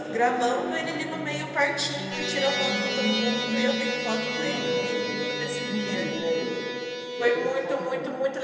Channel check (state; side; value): identical; both; correlation 1.00